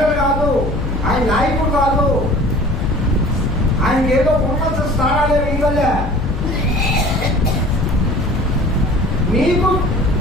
కాదు, ఆయన నాయకుడు కాదు, ఆయనకి ఏదో ఉన్నత స్థానాలే ఇవ్వలే. నీకు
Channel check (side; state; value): left; noise; hum, 6 dB below the sound